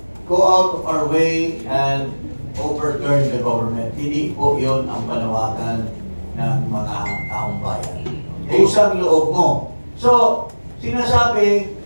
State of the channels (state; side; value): inverted; both; correlation -1.00